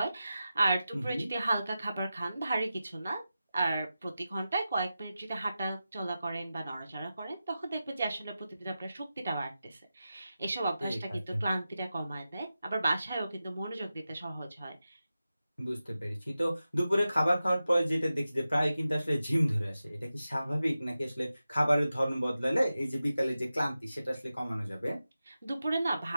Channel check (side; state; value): both; inverted; correlation -0.93